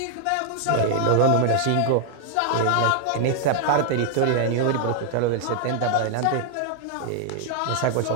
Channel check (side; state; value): both; different; correlation 0.00